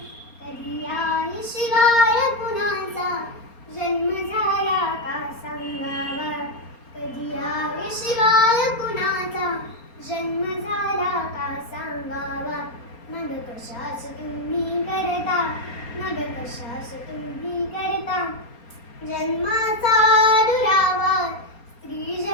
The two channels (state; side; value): late; right; 4.3 ms